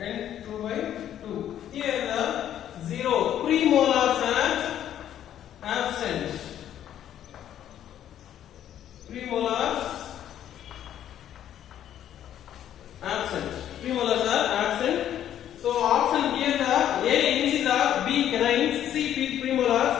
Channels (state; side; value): quieter; right; 10.8 dB